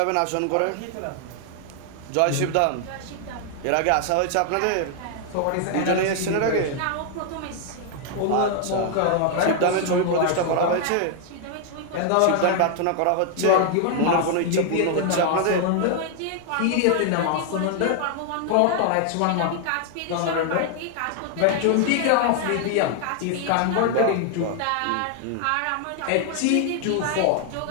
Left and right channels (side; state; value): both; different; correlation 0.00